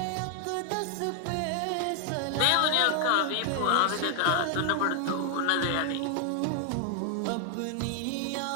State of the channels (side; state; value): both; different; correlation 0.00